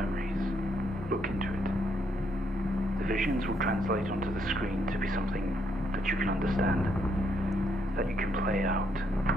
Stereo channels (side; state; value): both; normal; correlation 0.73